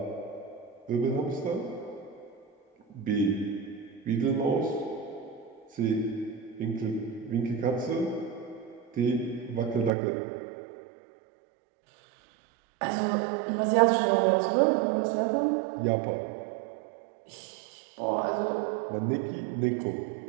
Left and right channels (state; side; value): drops out; left; at 9.9 s